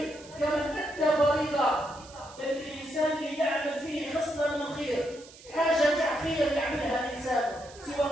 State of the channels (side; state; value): right; noise; hiss, 20 dB below the sound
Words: كمن أدى فريضة. بل الإنسان اللي يعمل فيه خصلة من الخير، حاجة خير يعملها الإنسان سوى